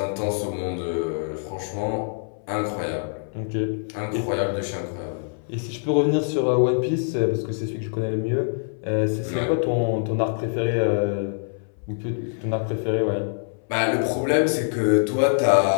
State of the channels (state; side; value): silent; right; 62 dB below the other